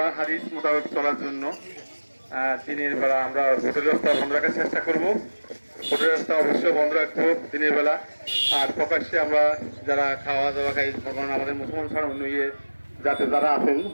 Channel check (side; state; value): both; inverted; correlation -1.00